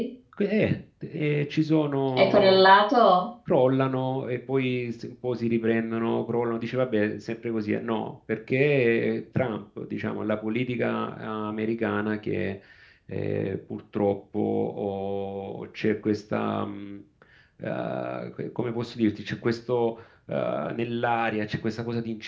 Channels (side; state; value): both; identical; correlation 1.00